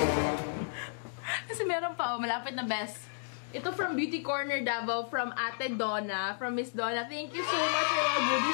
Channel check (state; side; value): silent; right; digital silence